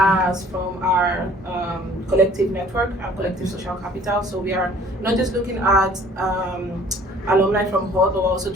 from our collective network, our collective social capital. So we are not just looking at alumni from HULT, but we're also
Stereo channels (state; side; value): normal; both; correlation 0.53